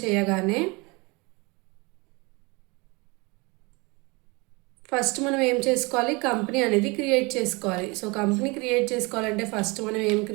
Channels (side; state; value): left; quieter; 27.0 dB